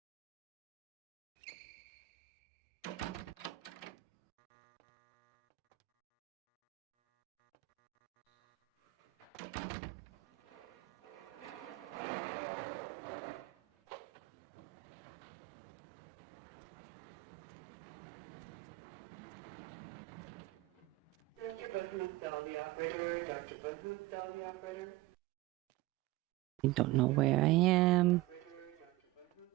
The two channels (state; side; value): quieter; left; 19.0 dB